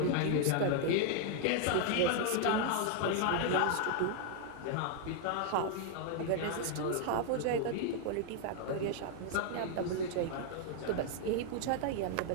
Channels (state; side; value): different; both; correlation 0.00